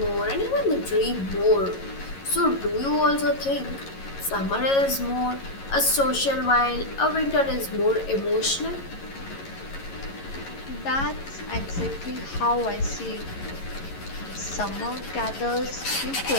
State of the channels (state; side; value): late; right; 11 ms